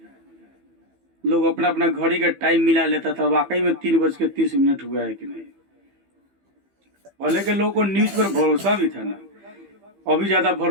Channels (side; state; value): left; late; 15 ms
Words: लोग अपना अपना घड़ी का टाइम मिला लेता था, वाकई में 3:30 हुआ है कि नहीं। पहले के लोगों को न्यूज पर भरोसा भी था ना, अभी ज्यादा